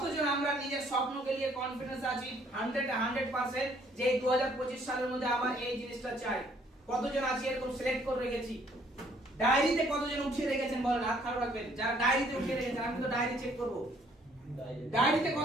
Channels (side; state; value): both; normal; correlation 0.63